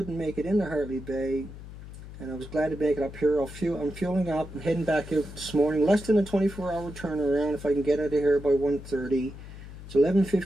make it into Hartley Bay, and I was glad to make it up here. I'm fueling up and heading back out this morning. Less than a 24-hour turnaround if I can get out of here by 1:30. It's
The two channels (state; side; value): noise; left; hum, 14 dB below the sound